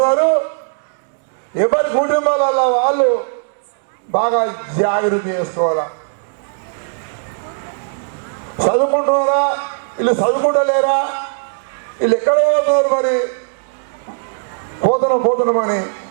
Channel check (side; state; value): left; silent; 66 dB below the other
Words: ఎవరి కుటుంబాలలో వాళ్ళు బాగా జాగ్రత్త చేసుకోవాలా. చదువుకుంటున్నారా, వీళ్ళు చదువుకుంటలేరా, వీళ్ళు ఎక్కడ పోతున్నారు, మరి పోతున్నామని